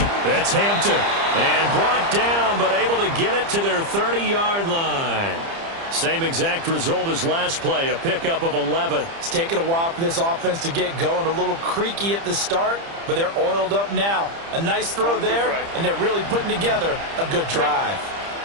That's Hampton. And brought down, but able to get it to their 30-yard line. Same exact result as last play, a pickup of 11. It's taken a while for this offense to get going. A little creaky at the start, but they're oiled up now. A nice throw there, and they're really putting together a good drive.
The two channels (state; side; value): late; left; 30 ms